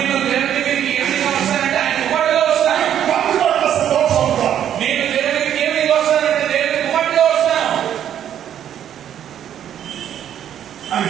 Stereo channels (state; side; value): quieter; left; 10.0 dB